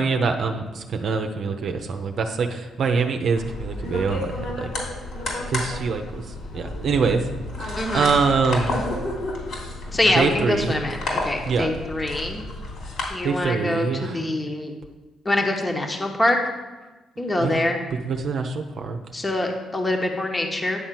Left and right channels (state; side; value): normal; both; correlation 0.79